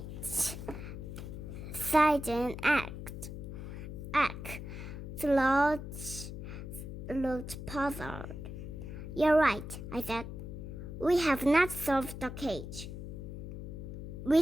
Second Act. Sludge looked puzzled. You're right, I said. We have not solved the cage. We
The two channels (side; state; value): left; noise; hum, 8 dB below the sound